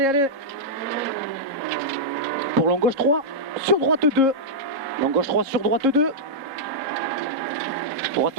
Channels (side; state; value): left; late; 3.7 ms